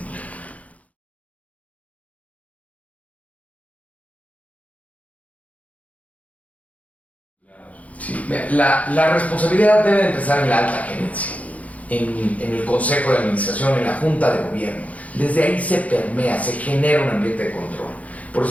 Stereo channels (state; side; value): late; right; 0.069 ms